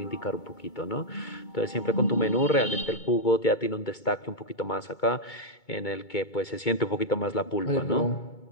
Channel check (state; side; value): late; right; 2.2 ms